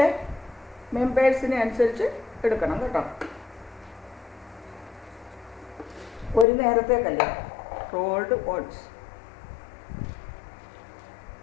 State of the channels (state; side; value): drops out; right; at 6.5 s